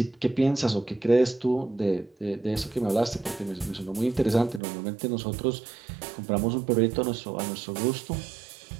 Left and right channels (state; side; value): drops out; left; at 4.6 s